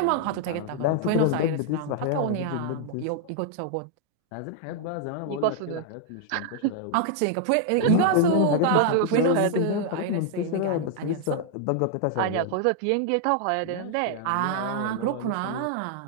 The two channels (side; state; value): both; different; correlation 0.00